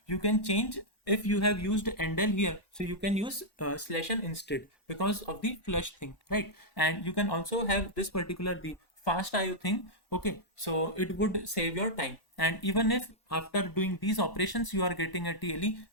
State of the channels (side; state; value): right; late; 1.1 ms